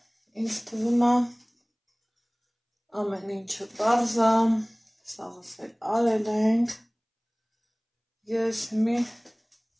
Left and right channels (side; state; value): both; identical; correlation 1.00